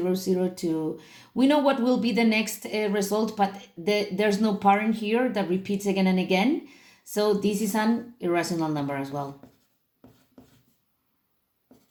0, 2. We know what will be the next result, but there's no pattern here that repeats again and again. So this is an irrational number as well.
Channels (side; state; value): both; identical; correlation 1.00